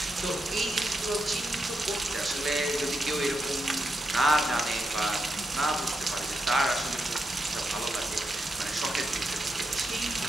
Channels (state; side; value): normal; both; correlation 0.84